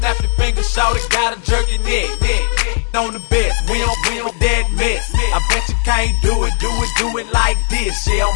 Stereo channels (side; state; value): right; silent; 58 dB below the other